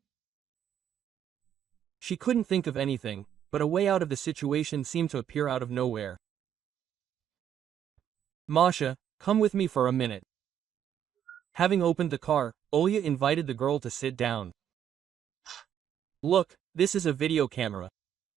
She couldn't think of anything, but a way out of the situation seemed to appear out of nowhere. "Masha, come with me for a minute. Having opened the car, Olga invited the girl to sit down. Look, this is a video camera.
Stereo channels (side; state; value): left; quieter; 9.6 dB